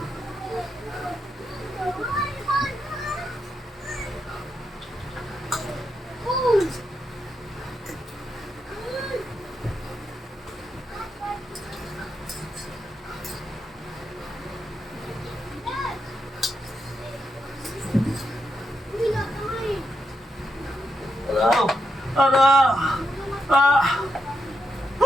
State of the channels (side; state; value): both; normal; correlation 0.83